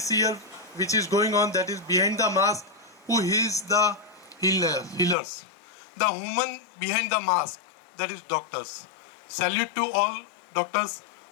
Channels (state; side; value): drops out; right; at 5.2 s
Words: year, which is going on, that is behind the mask, who heals the healers. The woman behind the mask, that is doctors. Salute to all doctors